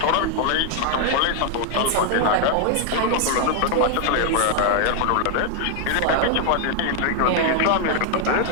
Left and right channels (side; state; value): both; different; correlation 0.00